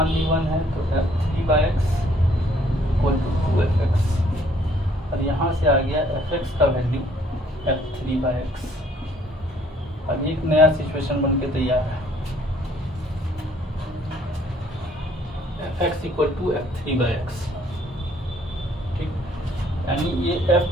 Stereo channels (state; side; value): normal; both; correlation 0.62